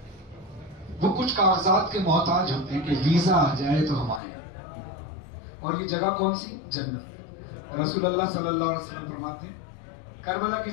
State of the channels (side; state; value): right; drops out; at 4.2 s